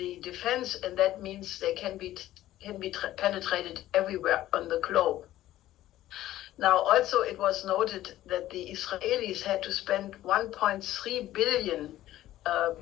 defense, and that means they can be penetrated everywhere on the globe. Now, also, it was noted that the Israelis had to spend 1.3 billion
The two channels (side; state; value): right; quieter; 14.3 dB